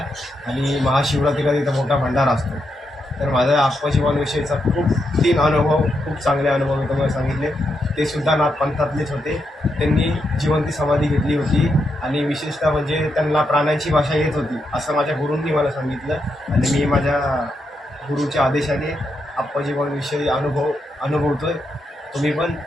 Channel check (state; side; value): normal; both; correlation 0.82